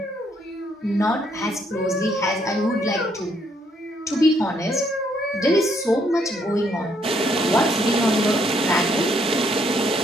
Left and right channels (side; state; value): both; normal; correlation 0.71